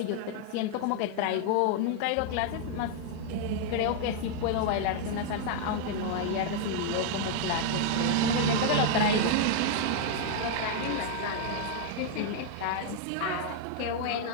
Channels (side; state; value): both; different; correlation 0.00